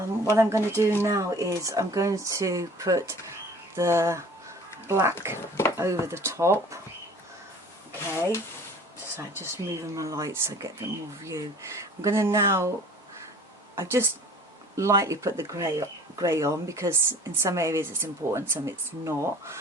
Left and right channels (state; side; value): normal; both; correlation 0.47